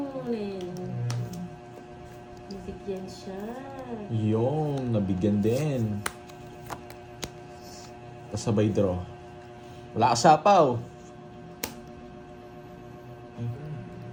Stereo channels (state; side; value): identical; both; correlation 1.00